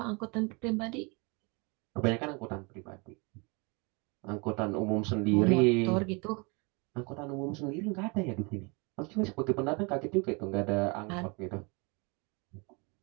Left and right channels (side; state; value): left; quieter; 30.4 dB